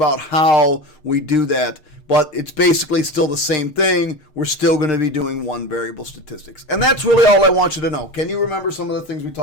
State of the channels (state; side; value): late; right; 6.6 ms